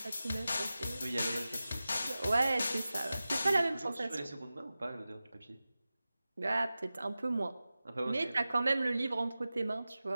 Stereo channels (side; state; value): both; inverted; correlation -0.95